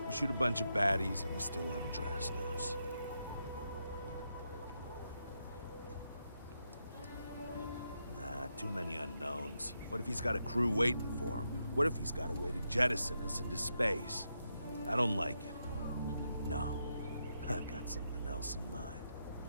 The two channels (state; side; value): inverted; both; correlation -0.83